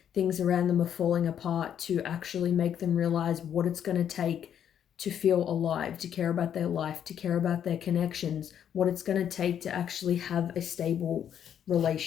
Things around them are falling apart to actually make them realize what it's going to take to feel alive, to care about their life, to care about their connections, what it's going to take to actually have a stable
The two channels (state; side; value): quieter; right; 9.2 dB